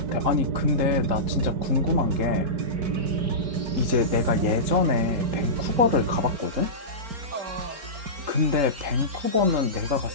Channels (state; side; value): late; left; 4.4 ms